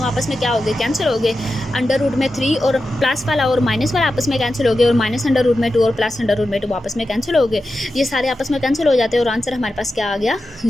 आपस में क्या हो गए, कैंसिल हो गए, अंडर रूट में 3 और प्लस वाला और माइनस वाला आपस में कैंसिल हो गए, और माइनस अंडर रूट में 2 और प्लस अंडर रूट में 2 आपस में कैंसिल हो गए, ये सारे आपस में कैंसिल हो जाते हैं और आंसर हमारे पास क्या आ गया,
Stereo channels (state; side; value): normal; both; correlation 0.91